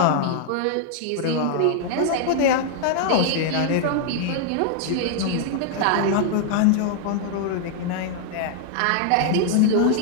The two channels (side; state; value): both; different; correlation 0.00